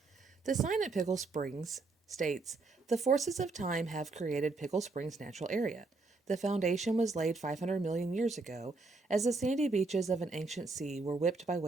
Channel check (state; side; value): quieter; left; 3.6 dB